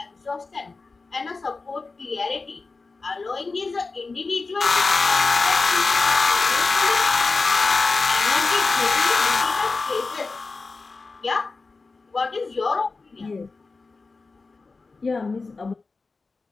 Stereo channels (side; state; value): right; quieter; 4.0 dB